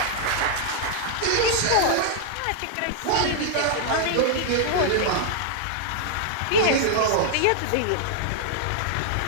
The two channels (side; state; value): both; different; correlation -0.01